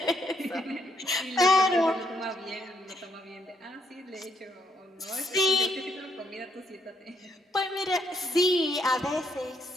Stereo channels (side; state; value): both; normal; correlation 0.73